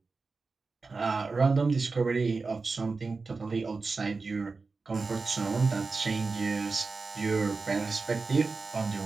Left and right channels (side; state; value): left; quieter; 4.1 dB